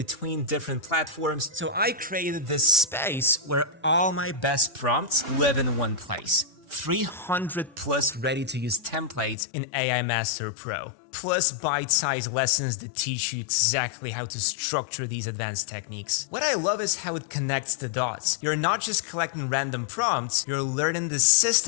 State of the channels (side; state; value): right; drops out; at 9.3 s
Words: different platforms. So I created this space where all my best prompts live in one place. 300 plus ready-to-use templates in AI Master Pro, plus bite-sized lessons that teach you exactly how to structure these advanced techniques. What I love is how it connects the dots. You're not just collecting random prompts, you're learning the